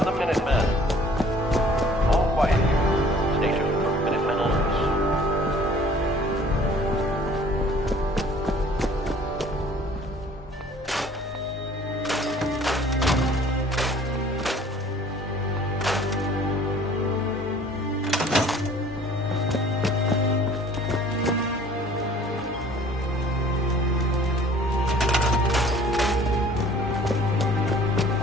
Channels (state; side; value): normal; both; correlation 0.52